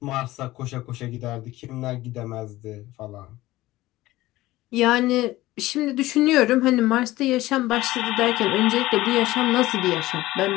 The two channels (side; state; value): right; quieter; 17.3 dB